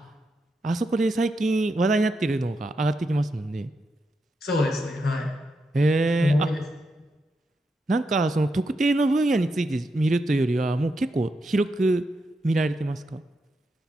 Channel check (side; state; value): both; normal; correlation 0.84